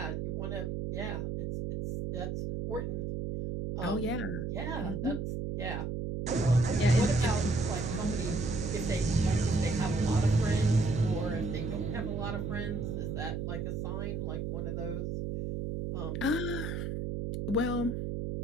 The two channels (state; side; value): noise; right; hum, 3 dB below the sound